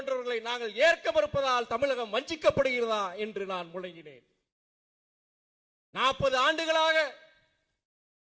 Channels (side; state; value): both; identical; correlation 1.00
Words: நாங்கள் ஏற்க மறுப்பதால் தமிழகம் வஞ்சிக்கப்படுகிறதா என்று நான் முழங்கினேன். 40 ஆண்டுகளாக